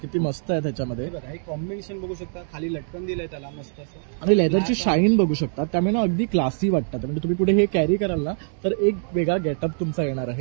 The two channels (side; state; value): left; silent; 63 dB below the other